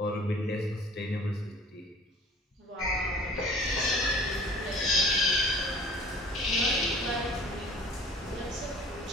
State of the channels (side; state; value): both; normal; correlation 0.48